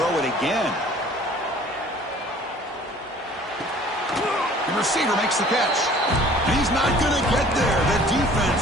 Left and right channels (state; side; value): normal; both; correlation 0.51